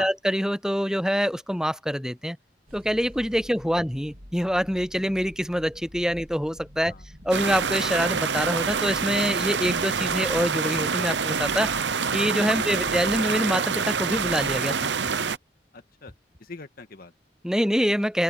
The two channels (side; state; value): both; normal; correlation 0.67